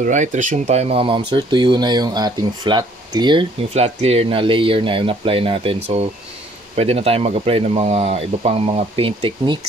resume tayo mga ma'am sir. Tuyo na yung ating flat clear. Yung flat clear na layer na yung apply natin. So, pwede na tayo mag-apply ng mga iba pang mga paint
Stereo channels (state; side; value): normal; both; correlation 0.60